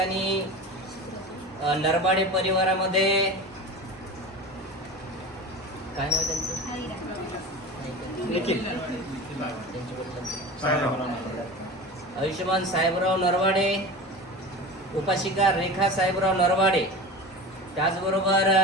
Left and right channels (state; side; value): normal; both; correlation 0.31